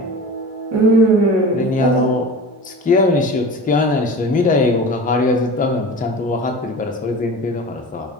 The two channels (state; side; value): normal; both; correlation 0.35